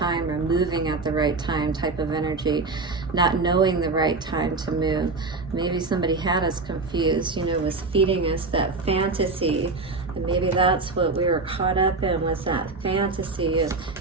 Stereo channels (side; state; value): left; quieter; 3.7 dB